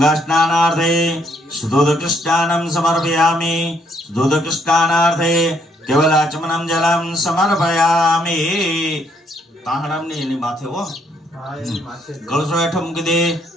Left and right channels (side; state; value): both; normal; correlation 0.70